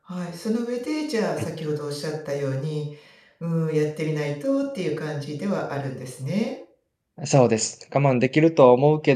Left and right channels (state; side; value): identical; both; correlation 1.00